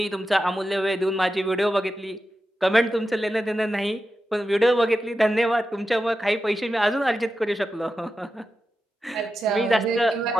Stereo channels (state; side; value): normal; both; correlation 0.91